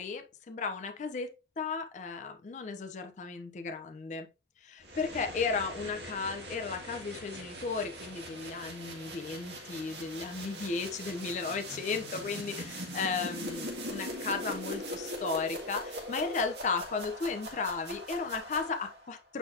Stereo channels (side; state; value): right; quieter; 3.6 dB